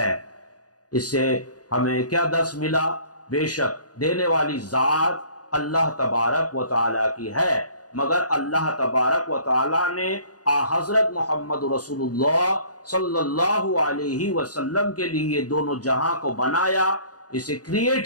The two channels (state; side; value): late; right; 0.68 ms